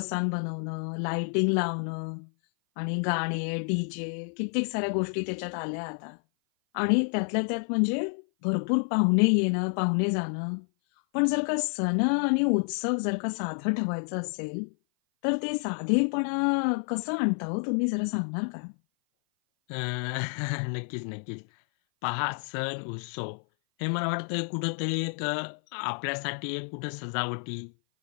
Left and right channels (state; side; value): silent; right; 56 dB below the other